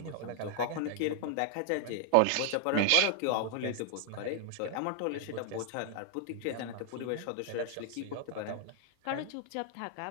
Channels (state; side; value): different; both; correlation 0.00